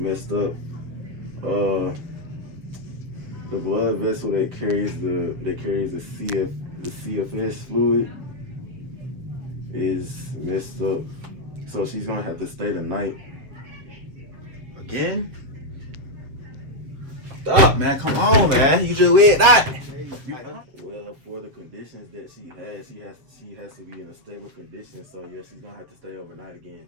up. The blood vessel that carries the CFS fluid is messed up. So she's gonna have to stay the night. Again? Stop, man. Come on, man. You just weird that. Well, for the conditions that she has to be in a stable condition. So yeah, she's gonna have to stay overnight again.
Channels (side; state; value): left; late; 7.9 ms